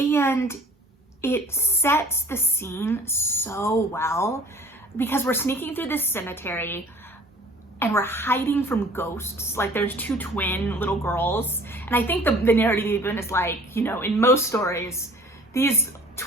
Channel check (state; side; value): normal; both; correlation 0.49